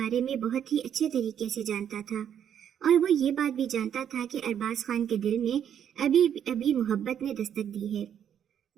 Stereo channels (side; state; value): left; quieter; 9.1 dB